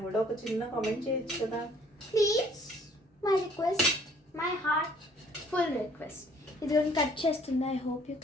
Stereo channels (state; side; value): normal; both; correlation 0.59